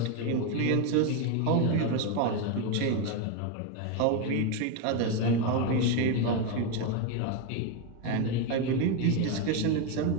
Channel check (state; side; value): different; both; correlation 0.02